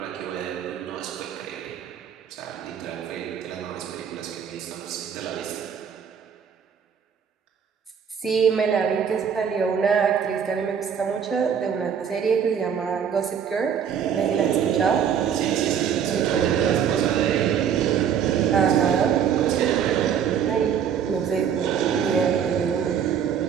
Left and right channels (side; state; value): left; quieter; 7.9 dB